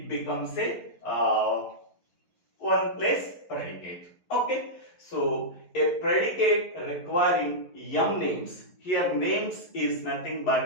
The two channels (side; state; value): right; late; 11 ms